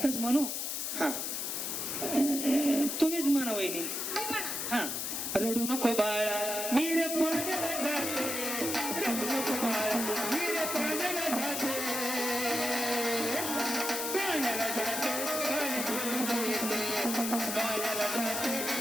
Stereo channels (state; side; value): noise; left; hiss, 2 dB below the sound